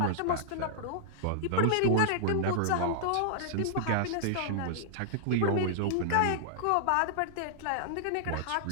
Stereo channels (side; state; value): both; different; correlation -0.01